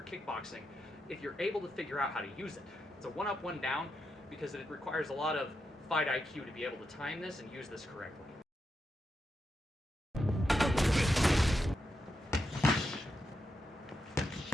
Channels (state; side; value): normal; both; correlation 0.85